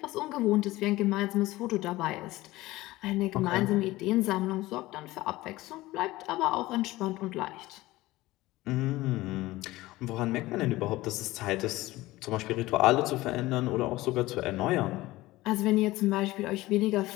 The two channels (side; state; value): right; quieter; 18.3 dB